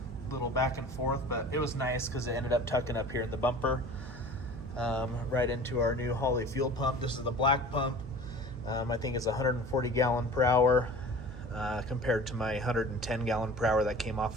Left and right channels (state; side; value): noise; right; hum, 12 dB below the sound